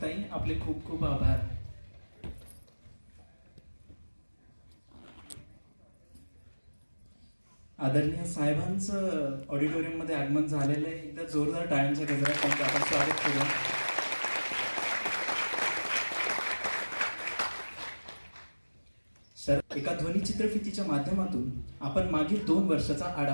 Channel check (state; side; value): inverted; both; correlation -1.00